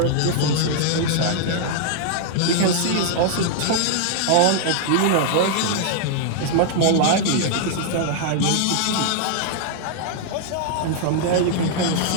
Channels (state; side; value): different; both; correlation 0.00